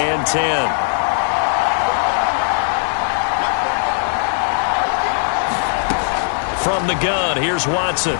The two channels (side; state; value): right; silent; digital silence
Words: 10. From the gun, here's Watson.